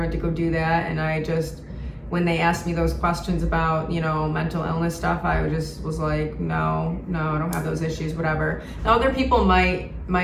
to go do that, and I just, when they asked me those questions about, mental illness stuff, I just was like, no, I don't have those issues, whatever. Now, other people might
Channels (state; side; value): identical; both; correlation 1.00